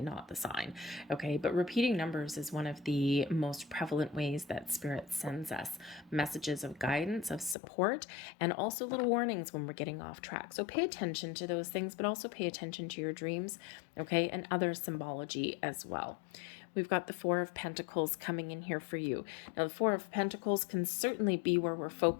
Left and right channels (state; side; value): drops out; right; at 7.6 s